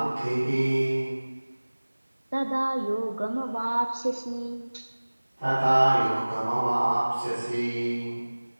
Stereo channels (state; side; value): inverted; both; correlation -1.00